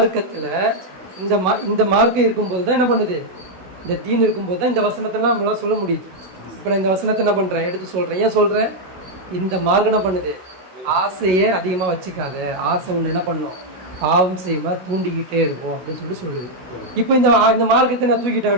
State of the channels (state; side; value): late; left; 16 ms